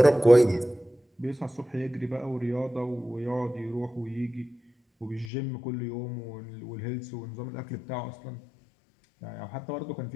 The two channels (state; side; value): drops out; right; at 5.3 s